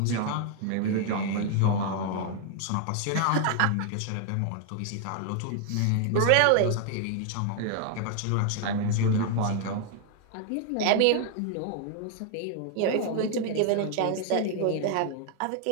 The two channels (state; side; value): different; both; correlation 0.00